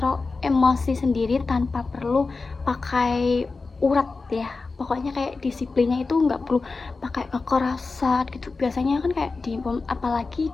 emosi sendiri tanpa perlu pakai urat ya. Pokoknya kayak disiplinnya itu nggak perlu pakai kekerasan gitu. Biasanya kan kayak apalagi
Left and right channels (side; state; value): right; quieter; 4.0 dB